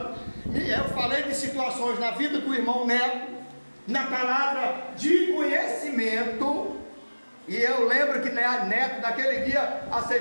eu falei de situações na vida do irmão Neto, na palavra de conhecimento. E eu lembro que Neto naquele dia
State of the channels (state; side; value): inverted; both; correlation -1.00